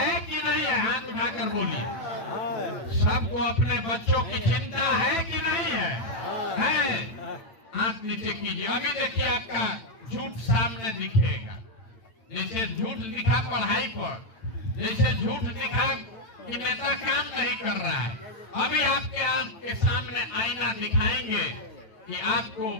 कि नहीं है? हाथ उठाकर बोलिए। सबको अपने बच्चों की चिंता है कि नहीं है? है? हाथ नीचे कीजिए। अभी देखिए आपका झूठ सामने दिखेगा। जैसे झूठ दिखा पढ़ाई पर, जैसे झूठ दिखा कि नेता काम नहीं कर रहा है, अभी आपके आंख के सामने आईना दिखाएंगे कि आपको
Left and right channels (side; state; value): right; late; 9.0 ms